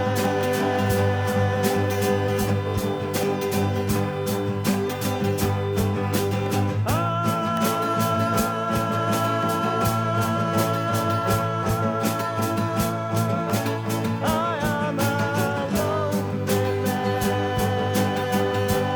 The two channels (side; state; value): both; identical; correlation 1.00